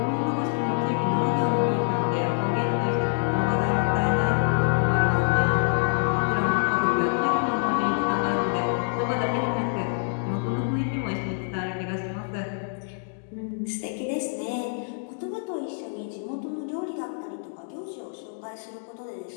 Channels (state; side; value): silent; right; digital silence